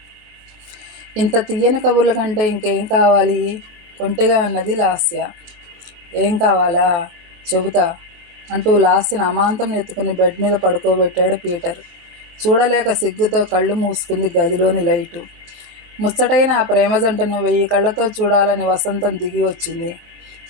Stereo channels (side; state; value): left; late; 23 ms